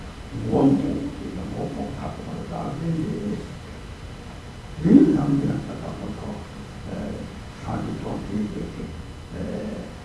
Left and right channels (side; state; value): both; identical; correlation 1.00